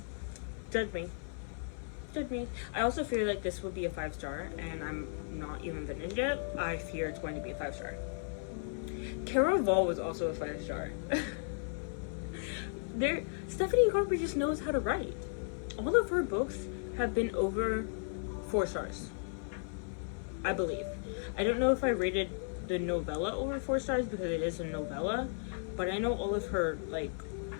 Judge me. I also feel like this would be a 5-star and I'm not even finished yet. I fear it's going to be a 5-star. Caraval was also a 5-star. Stephanie Garber just knows how to write. All of her books have been over 4 stars, I believe. I don't know if I rated the novella over 4 stars because it is a novella, but I know all of her like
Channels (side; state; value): right; silent; 54 dB below the other